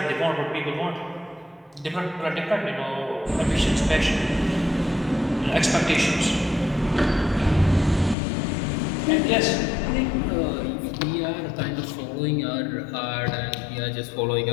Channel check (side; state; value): right; drops out; at 8.2 s